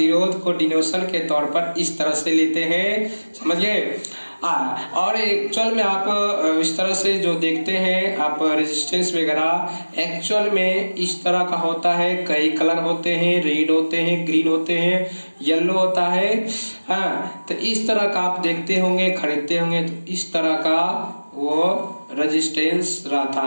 को डिनोशन के तौर पर इस तरह से लेते हैं, समझिए। और एक्चुअल में आप इस तरह से जो देखते हैं आप रेजिस्टेंस वगैरह, एक्चुअल में इस तरह का होता है। कई कलर होते हैं, रेड होते हैं, ग्रीन होते हैं, येलो होता है। हाँ, तो इस तरह का आप देखते होंगे, खरीदते होंगे, तो इस तरह का वो रेजिस्टेंस रहता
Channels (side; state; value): both; inverted; correlation -1.00